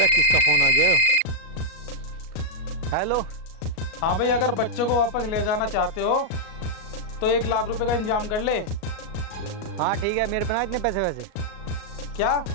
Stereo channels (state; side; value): late; right; 37 ms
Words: किसका फोन आ गया? हेलो। हाँ भाई, अगर बच्चे को वापस ले जाना चाहते हो तो 1 लाख रुपए का इंतजाम कर ले। हाँ ठीक है, मेरे पास इतने पैसे वैसे। क्या?